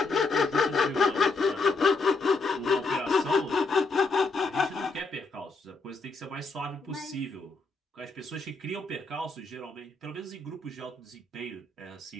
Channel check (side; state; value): right; quieter; 3.7 dB